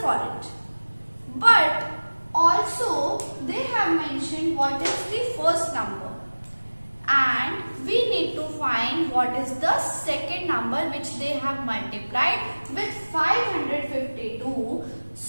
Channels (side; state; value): both; inverted; correlation -1.00